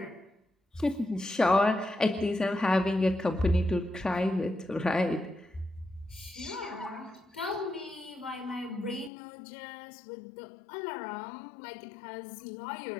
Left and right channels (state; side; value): drops out; right; at 9.1 s